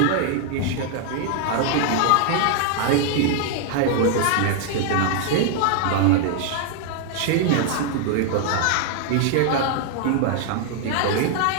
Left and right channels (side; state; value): both; different; correlation 0.00